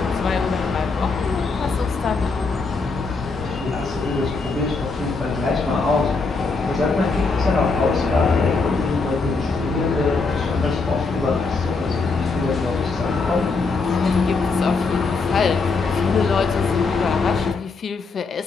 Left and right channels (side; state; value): right; quieter; 4.2 dB